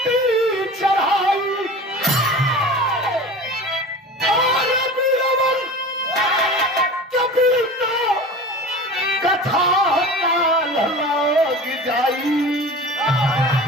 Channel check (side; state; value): both; normal; correlation 0.36